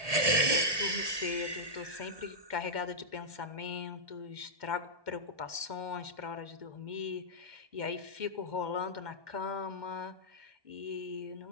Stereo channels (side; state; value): left; late; 1.2 ms